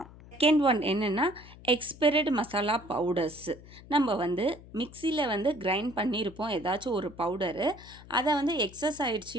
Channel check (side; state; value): left; noise; hum, 19 dB below the sound